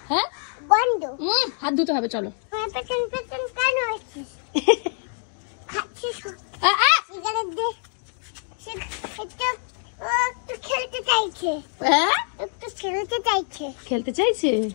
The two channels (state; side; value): silent; right; 56 dB below the other